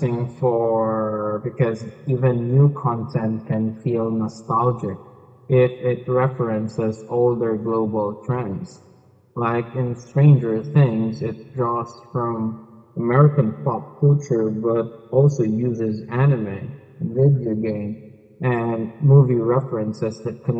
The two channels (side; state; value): both; identical; correlation 1.00